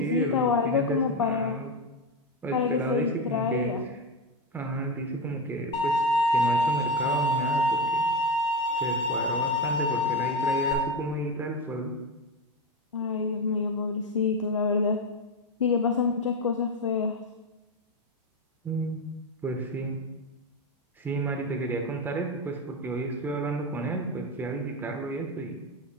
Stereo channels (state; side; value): normal; both; correlation 0.14